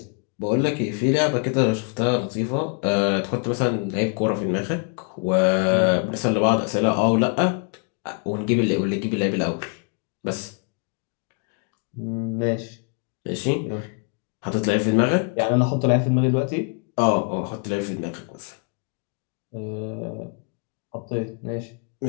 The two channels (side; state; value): right; quieter; 36.3 dB